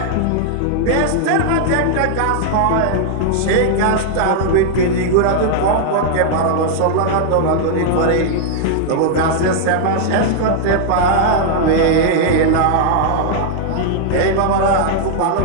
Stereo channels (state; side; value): different; both; correlation -0.01